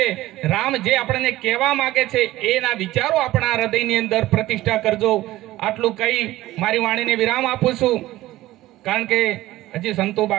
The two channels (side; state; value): left; quieter; 16.3 dB